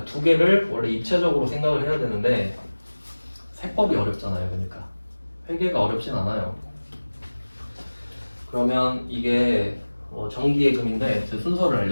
두 개를 원래 입체적으로 생각을 해야 되는데 세법이 어렵잖아요. 그러니까 회계가 어렵진 않아요. 그러면 이게 정기예금인데 제 순서를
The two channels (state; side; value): inverted; both; correlation -1.00